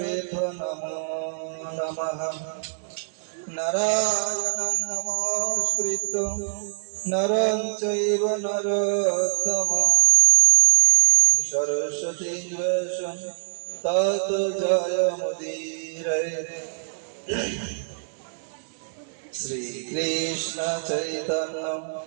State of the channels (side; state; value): left; silent; 63 dB below the other